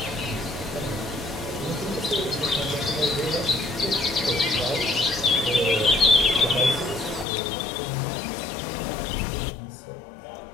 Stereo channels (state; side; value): drops out; right; at 7.2 s